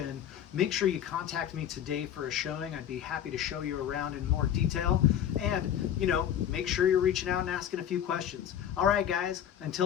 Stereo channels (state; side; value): quieter; right; 9.9 dB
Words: Make sure you contact me today for a showing. I'd be happy to show you around in more detail. And, you know, make sure you're reaching out and asking a few questions. All right, guys,